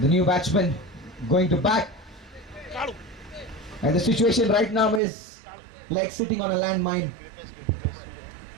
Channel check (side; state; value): left; drops out; at 5.0 s